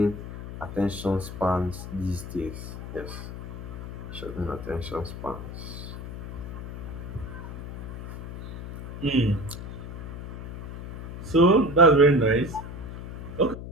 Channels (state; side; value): noise; left; hum, 9 dB below the sound